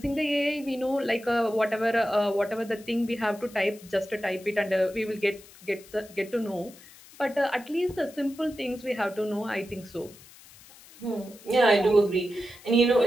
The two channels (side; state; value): left; noise; hiss, 22 dB below the sound